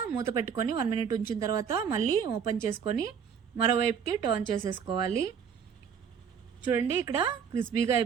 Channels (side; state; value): left; quieter; 7.2 dB